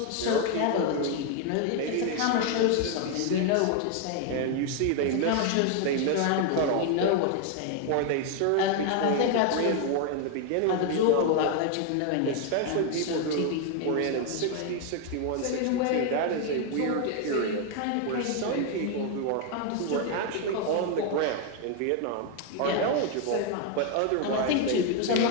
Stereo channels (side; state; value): both; different; correlation 0.01